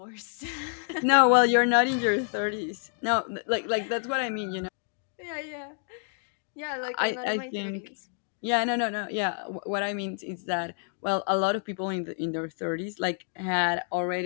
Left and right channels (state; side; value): silent; right; 56 dB below the other